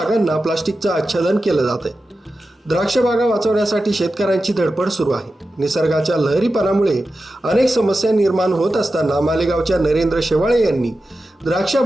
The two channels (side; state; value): both; normal; correlation 0.92